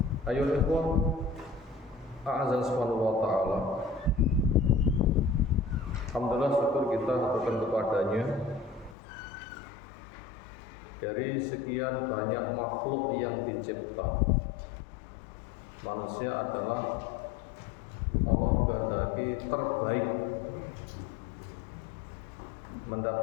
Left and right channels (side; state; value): right; drops out; at 9.0 s